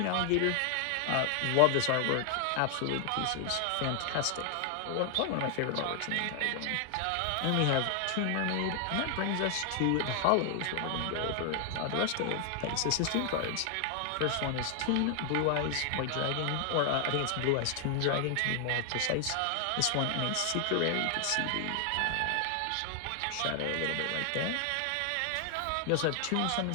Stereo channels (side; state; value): both; different; correlation 0.00